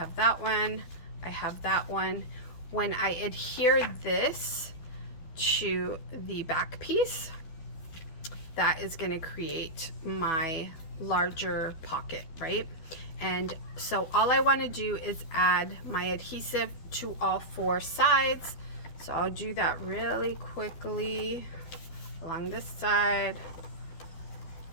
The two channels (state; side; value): late; right; 12 ms